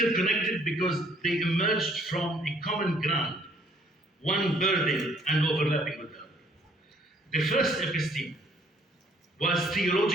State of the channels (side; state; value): both; normal; correlation 0.62